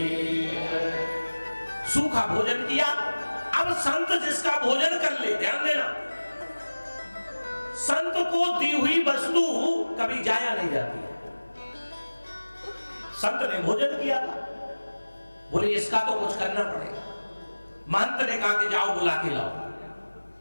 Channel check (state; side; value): inverted; both; correlation -1.00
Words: सूखा भोजन किया, अब संत जिसका भोजन कर ले, ध्यान देना, संत को दी हुई वस्तु कभी जाया नहीं जाती है। संत ने भोजन किया था, बोले इसका तो कुछ करना पड़ेगा। महंत ने कहा कि जाओ बुला के लाओ।